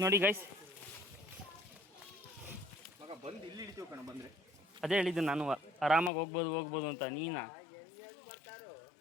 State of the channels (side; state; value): right; drops out; at 6.1 s